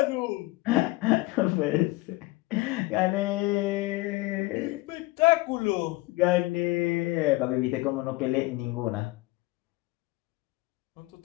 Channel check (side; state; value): right; quieter; 21.0 dB